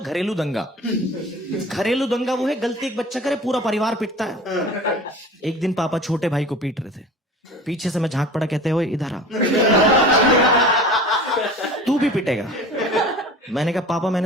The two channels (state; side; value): normal; both; correlation 0.40